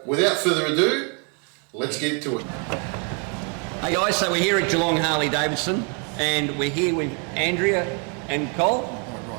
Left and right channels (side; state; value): left; quieter; 37.8 dB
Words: without further ado, let's get to it. Hey guys, so we're here at Geelong Harley Davidson and we're here with Andrea and Col.